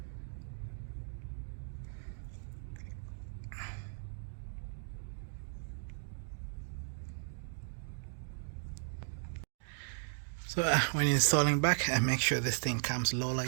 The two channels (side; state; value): left; silent; digital silence